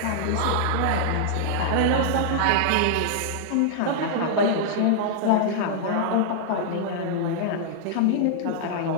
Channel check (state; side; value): different; both; correlation -0.01